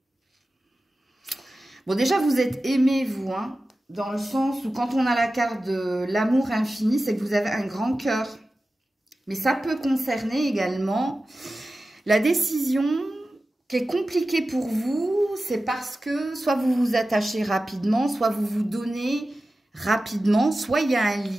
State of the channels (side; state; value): both; normal; correlation 0.94